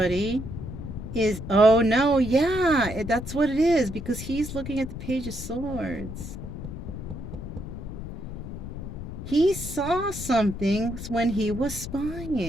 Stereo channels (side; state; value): left; noise; rumble, 9 dB below the sound